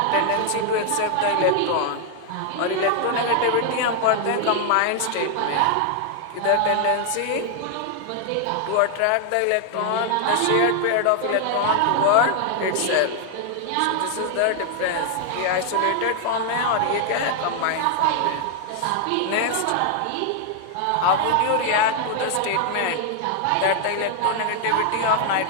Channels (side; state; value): both; different; correlation 0.00